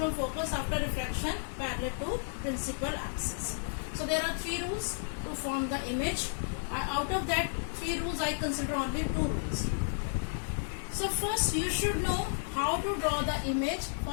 focus after refraction parallel to principal axis. So there are 3 rules to form the image. Out of that 3 rules, I consider only 2 rules. So first you should know how to draw the image.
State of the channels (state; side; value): silent; right; digital silence